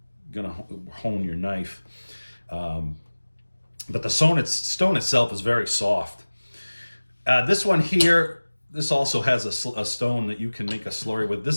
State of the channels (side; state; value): both; inverted; correlation -1.00